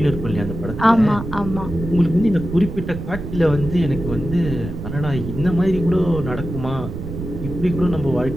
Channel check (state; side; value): noise; right; rumble, 8 dB below the sound